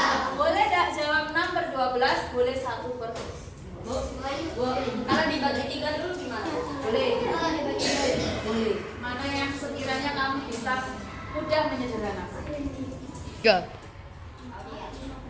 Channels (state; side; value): identical; both; correlation 1.00